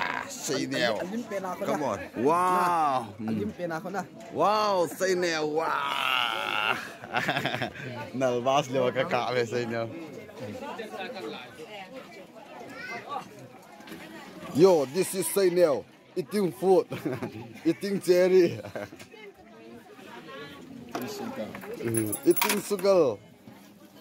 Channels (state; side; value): identical; both; correlation 1.00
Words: say nail come on wow wow say nail wow nalbas lewa ka ka ve say nail yo this is say nail eating food eating cherry eating sugar